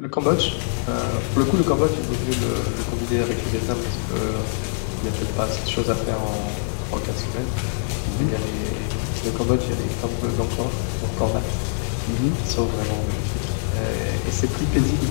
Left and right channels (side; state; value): right; silent; digital silence